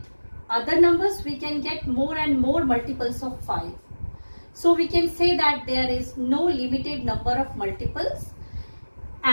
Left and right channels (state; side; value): inverted; both; correlation -1.00